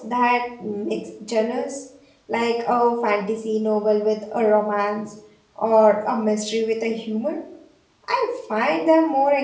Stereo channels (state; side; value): identical; both; correlation 1.00